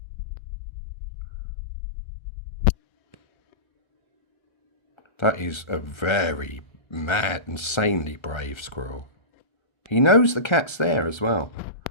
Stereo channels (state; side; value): late; right; 1.3 ms